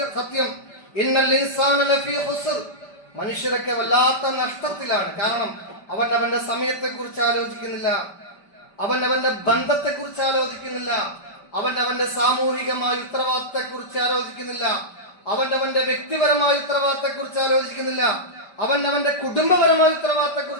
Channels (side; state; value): right; late; 5.1 ms